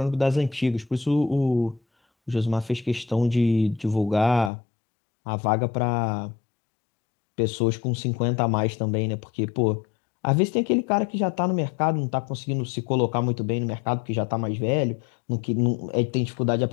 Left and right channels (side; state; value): right; drops out; at 4.5 s